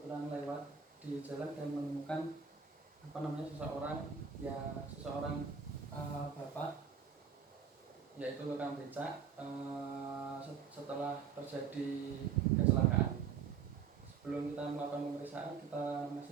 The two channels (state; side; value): quieter; left; 6.5 dB